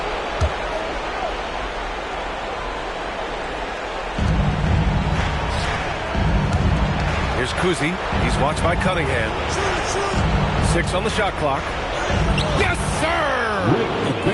Here's Kuzi. He's watched by Cunningham. 6 on the shot clock. Yes, sir! A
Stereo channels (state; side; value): identical; both; correlation 1.00